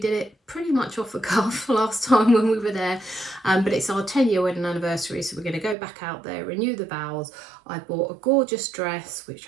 it pretty much off the cuff last time when we were there, but it's our 10-year wedding anniversary, so we're going to go back out there, renew the vows. I bought a gorgeous dress,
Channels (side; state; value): left; drops out; at 5.8 s